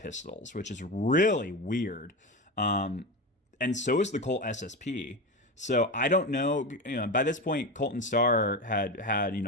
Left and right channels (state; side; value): normal; both; correlation 0.21